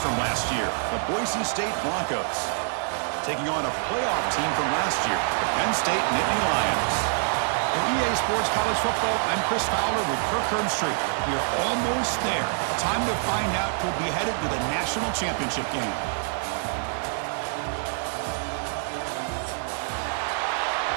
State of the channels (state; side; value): silent; left; 61 dB below the other